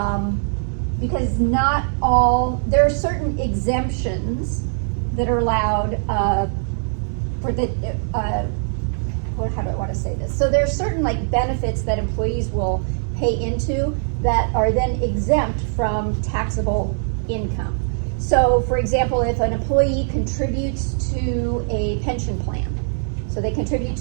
because not all, there are certain exemptions that are allowed for the, how do I want to say this? So there's certain like benefits that employees will pay into that are then exempt from taxable income. So for example, if an employee contributes to a pension plan, so they contribute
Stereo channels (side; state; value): left; silent; digital silence